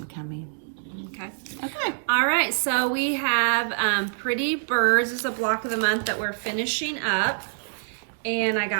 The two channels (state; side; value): silent; left; 61 dB below the other